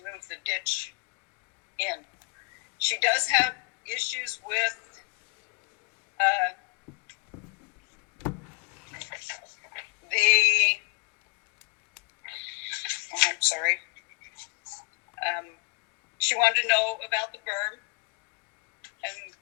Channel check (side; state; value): right; quieter; 34.9 dB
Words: move the ditch in. She does have issues with she wanted to know about the berm, and